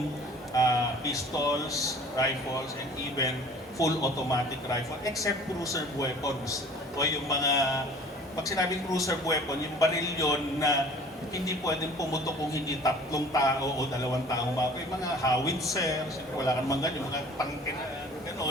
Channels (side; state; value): both; normal; correlation 0.48